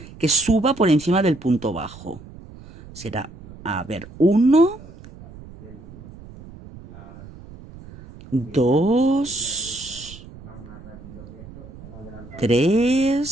que suba por encima del punto bajo. Será, a ver, 1, 2,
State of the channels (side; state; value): right; noise; rumble, 18 dB below the sound